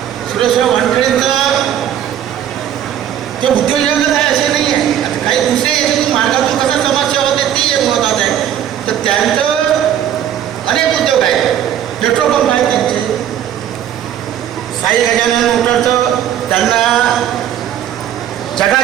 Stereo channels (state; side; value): quieter; left; 10.3 dB